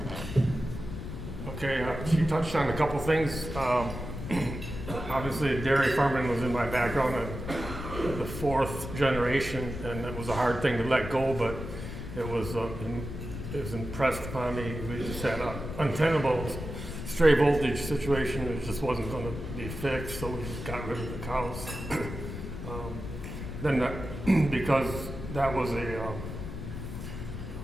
Okay, she touched on a couple things. Obviously, dairy farming was in my background, the fourth generation, and it was a hard thing to let go, but it was impressed upon me. We just had an untenable stray voltage situation. It just wasn't going to be fixed, so we just got rid of the cows. Because that was a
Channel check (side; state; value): left; noise; rumble, 8 dB below the sound